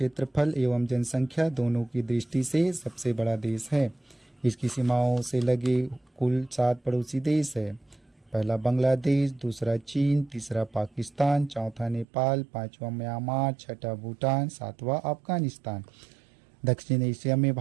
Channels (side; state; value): left; drops out; at 12.1 s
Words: एवं जनसंख्या दोनों की दृष्टि से सबसे बड़ा देश है। इसकी सीमाओं से लगे कुल 7 पड़ोसी देश है। पहला बांग्लादेश, दूसरा चीन, तीसरा पाकिस्तान, चौथा नेपाल, 5वां म्यांमार, 6ठा भूटान, 7वां अफगानिस्तान। दक्षिण एशिया में